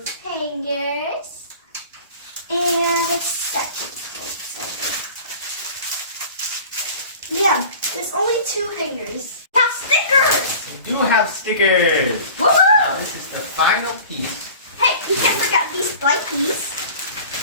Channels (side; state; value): both; inverted; correlation -0.42